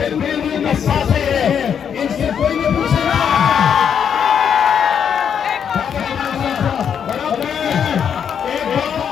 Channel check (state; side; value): quieter; right; 7.9 dB